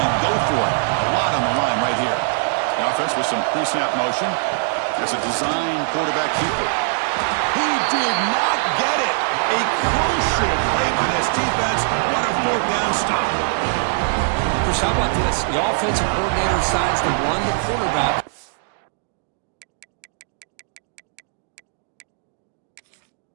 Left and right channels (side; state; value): left; silent; digital silence